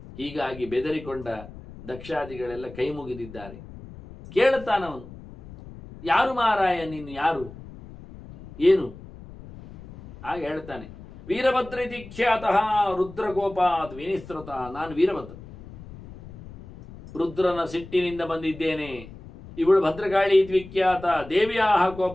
ಹೀಗಾಗಿ ಬೆದರಿಕೊಂಡ ದಕ್ಷಾದಿಗಳೆಲ್ಲ ಕೈ ಮುಗಿದಿದ್ದಾರೆ. ಕೇಳುತ್ತಾನವನು, ಯಾರು ಮಾರಾಯ ನೀನು, ಯಾರು, ಏನು? ಆಗ ಹೇಳ್ತಾನೆ, ವೀರಭದ್ರಿತಿ ಖ್ಯಾತಃ ರುದ್ರಗೋಪಾತ್ ವಿನಿಸೃತ. ನಾನು ವೀರಭದ್ರ, ರುದ್ರನ ಸಿಟ್ಟಿನಿಂದ ಬಂದಿದ್ದೇನೆ. ಇವಳು ಭದ್ರಕಾಳಿ ವಿಖ್ಯಾತ, ದೇವಿಯ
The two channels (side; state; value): left; noise; rumble, 16 dB below the sound